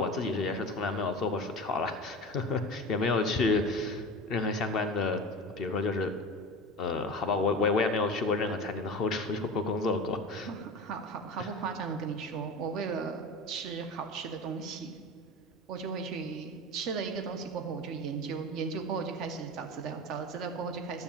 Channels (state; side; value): normal; both; correlation 0.31